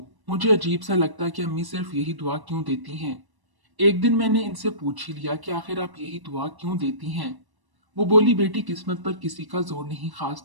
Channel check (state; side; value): late; left; 1.0 ms